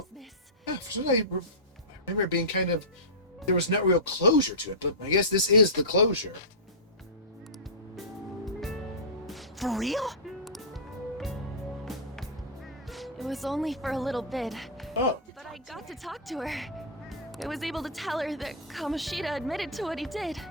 consciousness. Yeah, for some reason, I remember it being kind of... There was no real closure to it, but I guess this is the closure. For real? It was only for a little bit, Oh. but I got to talk to her. I was able to tell her that Kamoshida admitted to what he did.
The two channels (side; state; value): both; normal; correlation -0.15